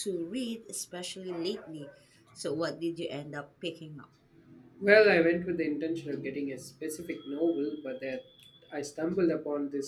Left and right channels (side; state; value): both; identical; correlation 1.00